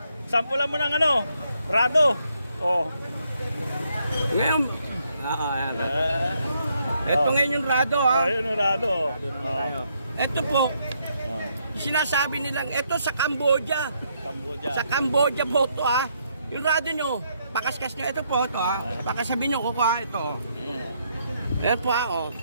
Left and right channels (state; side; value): inverted; both; correlation -0.74